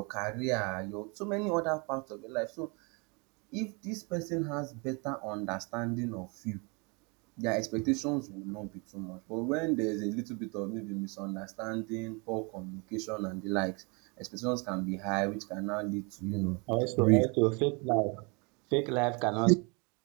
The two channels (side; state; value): left; quieter; 31.0 dB